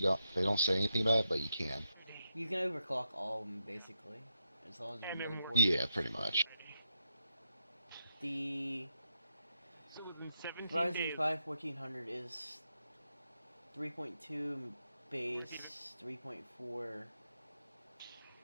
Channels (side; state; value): both; inverted; correlation -0.84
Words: they don't say anything about it, but you can. You can overclock all of them basically, as long as your motherboard. Yeah, pretty much. The So within 17 Ryzen days. 5 1400 is 3.2 base, 3.4